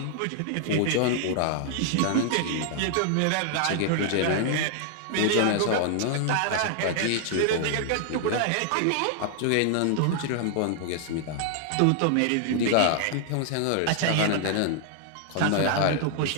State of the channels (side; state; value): both; different; correlation 0.00